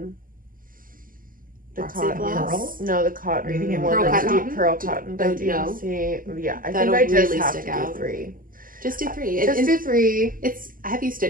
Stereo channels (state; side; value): late; left; 0.41 ms